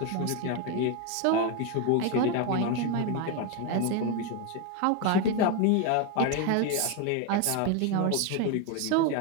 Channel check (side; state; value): both; different; correlation 0.02